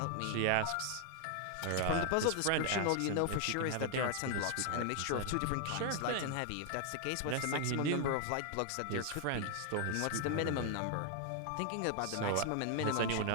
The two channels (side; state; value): both; different; correlation 0.00